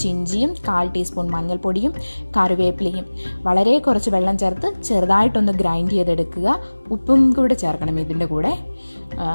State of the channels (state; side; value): inverted; both; correlation -1.00